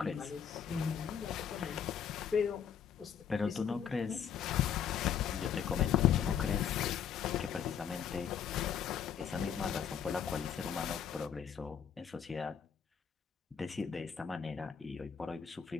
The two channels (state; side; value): quieter; right; 8.0 dB